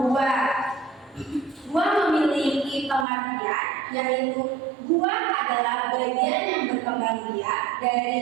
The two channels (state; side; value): drops out; left; at 3.1 s